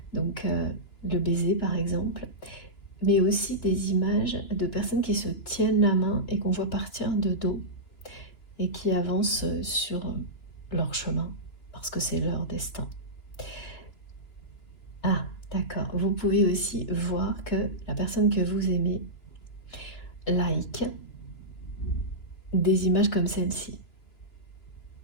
donc le baiser par exemple, mais aussi des images de personnes qui se tiennent la main et qu'on voit partir de dos et qui avancent sur leur chemin parce que c'est leur destin. Ah, d'accord. Vous pouvez aussi voir que la personne que vous aimez like des images comme celle-ci.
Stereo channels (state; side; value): late; right; 2.9 ms